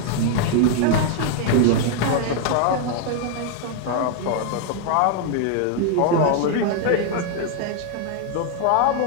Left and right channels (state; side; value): different; both; correlation 0.00